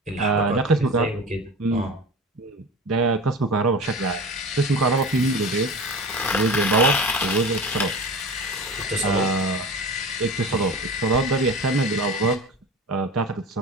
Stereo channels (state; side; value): normal; both; correlation 0.32